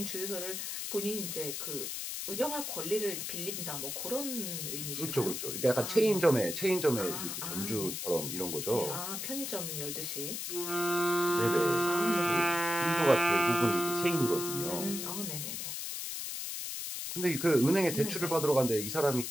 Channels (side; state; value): left; noise; hiss, 5 dB below the sound